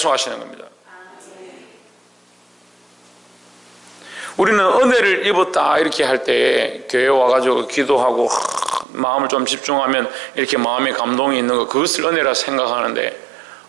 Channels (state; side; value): drops out; left; at 8.8 s